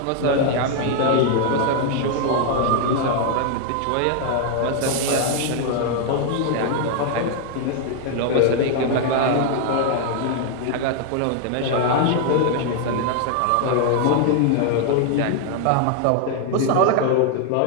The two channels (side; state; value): both; different; correlation 0.00